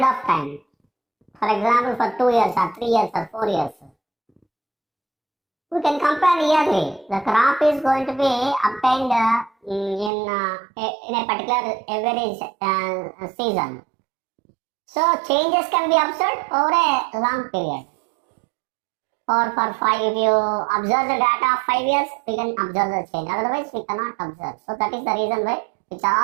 of time. For example, for 2 years or 3 years or 4 years. We can compare yearly. The crop is going to be obtained in a particular average season. So changes can be observed over a long period. Or for 5, if you observe the data of 5 years, we can observe the change. Otherwise, we cannot observe. So that is the reason why it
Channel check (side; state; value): left; drops out; at 10.1 s